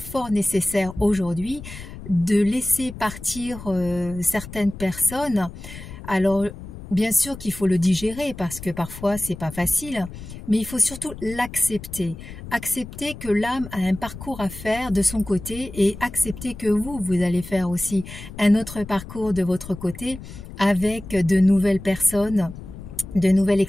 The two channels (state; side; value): noise; left; rumble, 13 dB below the sound